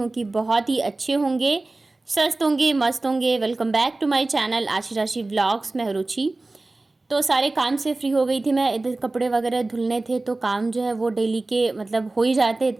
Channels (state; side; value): quieter; left; 3.1 dB